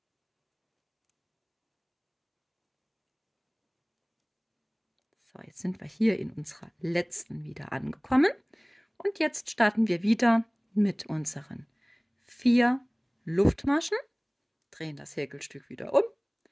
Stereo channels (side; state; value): both; identical; correlation 1.00